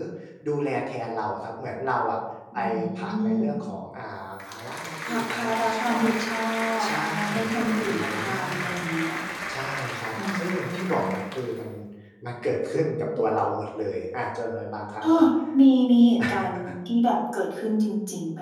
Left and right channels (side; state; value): both; identical; correlation 1.00